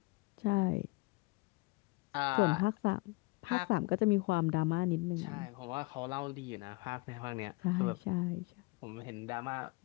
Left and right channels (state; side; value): quieter; right; 25.1 dB